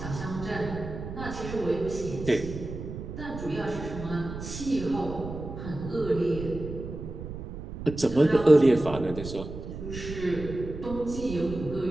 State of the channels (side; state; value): right; noise; rumble, 9 dB below the sound